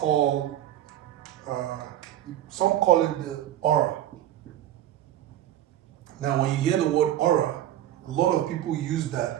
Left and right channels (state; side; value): quieter; left; 12.4 dB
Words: some call it the aura. Now when you hear the word aura, a lot of people use that